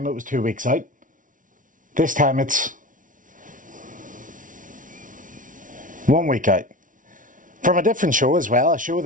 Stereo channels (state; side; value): late; left; 0.38 ms